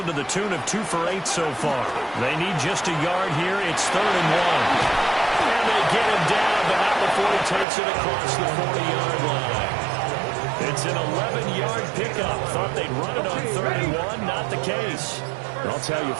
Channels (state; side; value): drops out; left; at 7.7 s